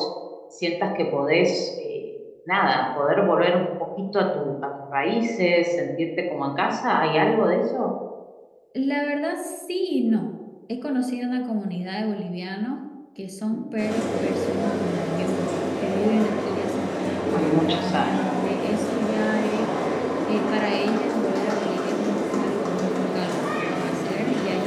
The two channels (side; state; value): both; identical; correlation 1.00